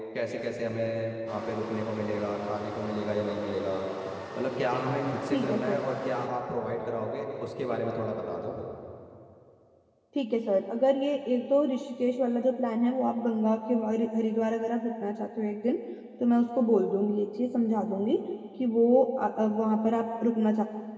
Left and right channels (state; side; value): identical; both; correlation 1.00